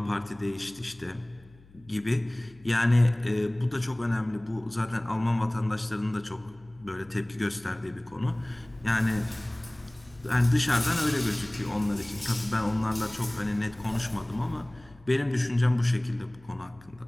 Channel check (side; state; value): left; noise; hum, 25 dB below the sound